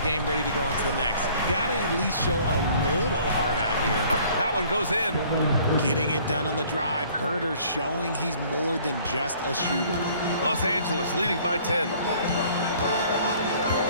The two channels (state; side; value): inverted; both; correlation -0.55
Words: game, ready to go into the next. Gotta at least show a little heart out here. That one goes in. Getting it done on the drive. Herder showing he's more than just a shooter. Los Angeles leading by 10.